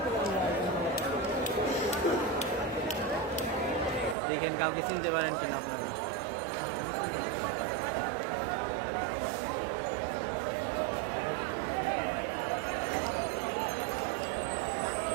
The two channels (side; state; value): left; drops out; at 4.2 s